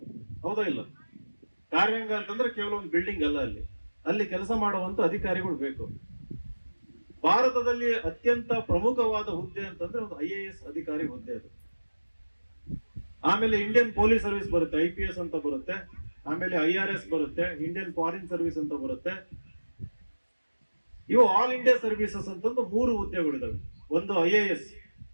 ಹೌದಾ ಇಲ್ಲ? ಕಾರ್ಯಾಂಗ ಅಂತಂದ್ರೆ ಕೇವಲ ಒಂದು ಬಿಲ್ಡಿಂಗ್ ಅಲ್ಲ, ಅಲ್ಲಿ ಕೆಲಸ ಮಾಡುವಂತ ಅಧಿಕಾರಿಗಳು ಬೇಕು. ಭಾರತದಲ್ಲಿ ಅತ್ಯಂತ ಪ್ರಮುಖವಾದ ಹುದ್ದೆ ಅಂತಂದ್ರೆ ಒಂದು IAS ಅಧಿಕಾರಿ ಹುದ್ದೆ ಅದು. ಆಮೇಲೆ ಇಂಡಿಯನ್ ಪೊಲೀಸ್ ಸರ್ವಿಸ್ ಬರುತ್ತೆ, IPS ಅಂತ ಬರುತ್ತೆ. ಆಮೇಲೆ IRS ಬರುತ್ತೆ, ಇಂಡಿಯನ್ ಫಾರಿನ್ ಸರ್ವಿಸ್ ಅಂತ ಬರುತ್ತೆ. ಇವು ಆಲ್ ಇಂಡಿಯಾ ಸರ್ವಿಸಸ್ ಅಂತಂದು 3 ಹುದ್ದೆಗಳಿದಾವೆ. ಒಂದು IAS,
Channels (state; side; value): inverted; both; correlation -1.00